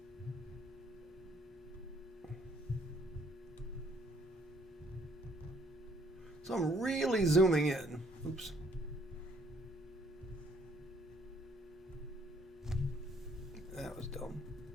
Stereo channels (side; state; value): both; normal; correlation 0.64